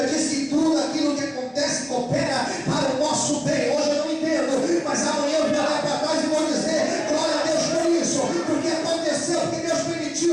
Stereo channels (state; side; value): identical; both; correlation 1.00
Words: diz que tudo aquilo que acontece coopera para o nosso bem. Hoje eu não entendo, mas amanhã eu vou olhar para trás e vou dizer: glória a Deus por isso, porque aconteceu, porque Deus